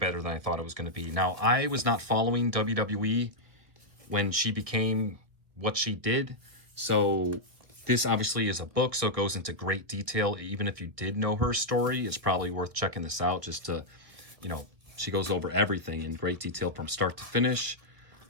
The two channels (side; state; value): left; late; 1.6 ms